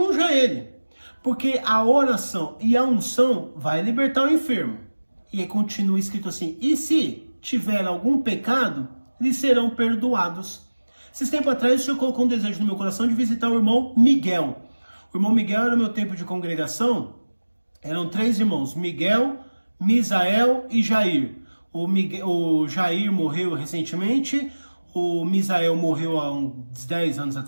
ele, porque a oração e a unção vai libertar o enfermo. E aí continua escrito assim, e se tiver algum pecado, lhes serão perdoados. Esses tempos atrás o Senhor colocou um desejo no meu coração de visitar o irmão Miguel. O irmão Miguel era o meu tempo de congregação, eram 3 irmãos, Miguel, Misael e Jair. O Jair morreu recentemente, o Misael morreu há uns 10 anos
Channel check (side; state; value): both; inverted; correlation -1.00